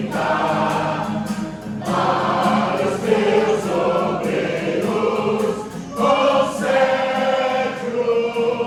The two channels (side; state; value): both; identical; correlation 1.00